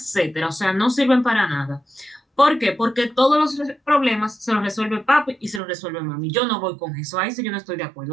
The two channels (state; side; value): drops out; left; at 5.6 s